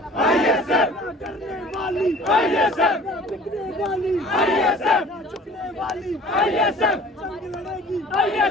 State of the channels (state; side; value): normal; both; correlation 0.47